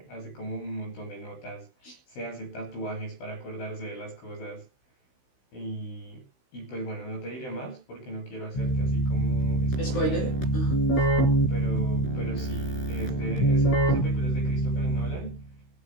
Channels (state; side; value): late; right; 16 ms